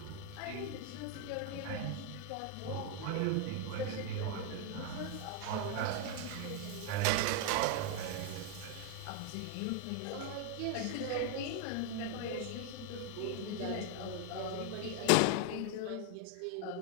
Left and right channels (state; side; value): different; both; correlation 0.01